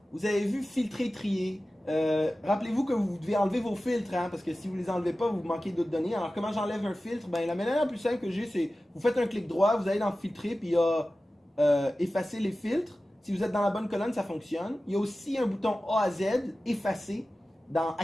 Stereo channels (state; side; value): normal; both; correlation 0.95